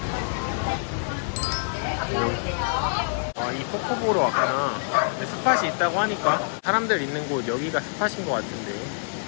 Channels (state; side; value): silent; right; digital silence